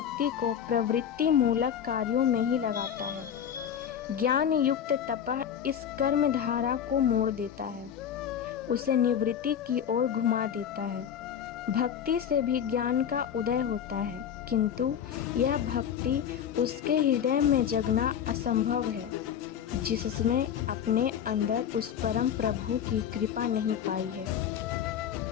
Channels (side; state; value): right; quieter; 8.8 dB